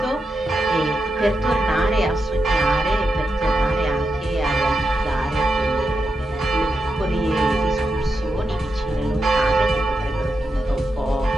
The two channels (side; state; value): both; normal; correlation 0.87